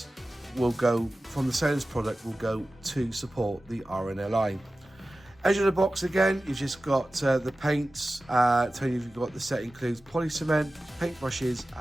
will go from the sales product will go to support the RNLI. Edge of the box again, you've just got the paints, telling you you've got the set includes poly cement, paint brushes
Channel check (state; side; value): normal; both; correlation 0.95